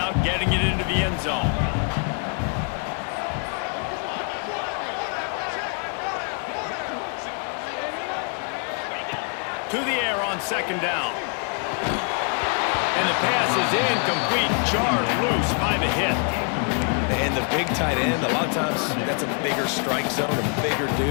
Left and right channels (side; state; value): right; quieter; 39.9 dB